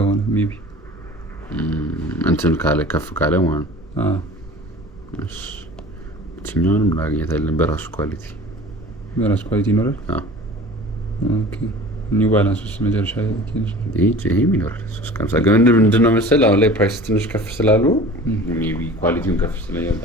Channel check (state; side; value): normal; both; correlation 0.41